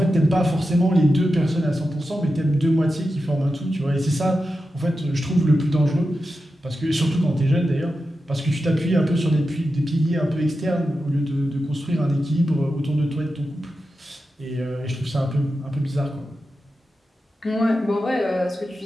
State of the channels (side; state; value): both; normal; correlation 0.91